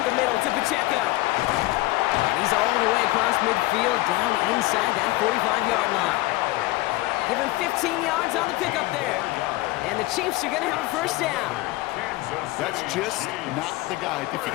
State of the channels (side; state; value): right; quieter; 19.3 dB